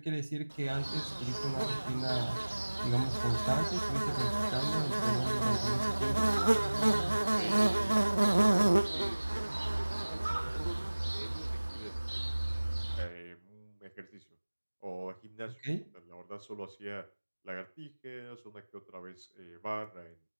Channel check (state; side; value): inverted; both; correlation -1.00